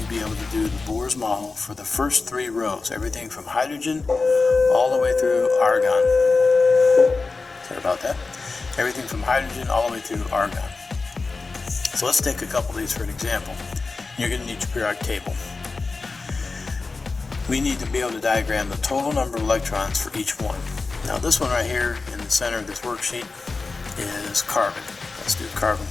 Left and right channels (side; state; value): right; quieter; 4.0 dB